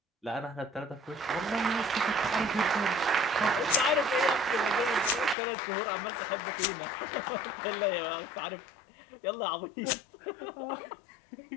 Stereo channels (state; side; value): drops out; right; at 5.4 s